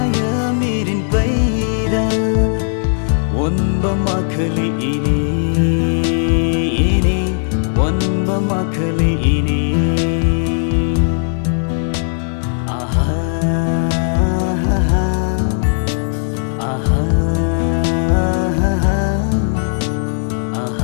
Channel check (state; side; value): silent; right; 59 dB below the other